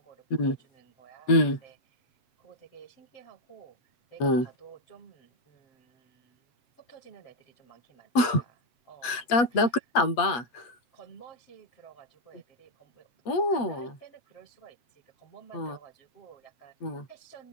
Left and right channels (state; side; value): late; right; 8.4 ms